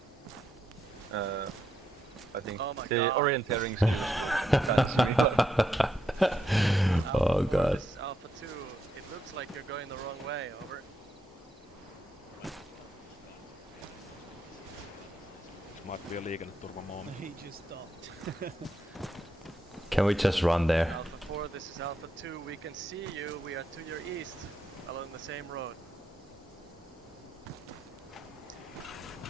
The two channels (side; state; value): both; normal; correlation 0.80